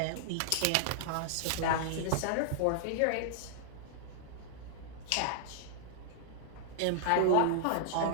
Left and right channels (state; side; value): different; both; correlation -0.01